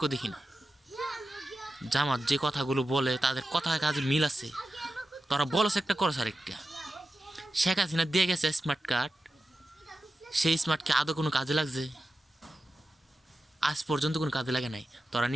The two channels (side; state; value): both; normal; correlation 0.92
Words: দেখি না। জামাত যে কথাগুলো বলে তাদের কথা কাজে মিল আছে। তোরা বলস একটা, করস আরেকটা। শেখ হাসিনা দিয়ে গেছে স্মার্ট কার্ড, সেই স্মার্ট কি আদৌ কোনো কাজে লাগছে? আজ পর্যন্ত কোনো কাজে লাগে নাই। তোরা